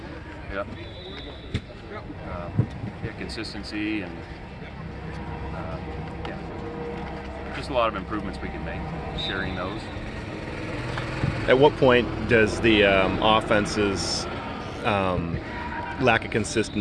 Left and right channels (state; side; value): identical; both; correlation 1.00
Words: Yep. Yeah, consistency and yeah, just a lot of improvements we can make. Sharing those. At what point does the offense's lack of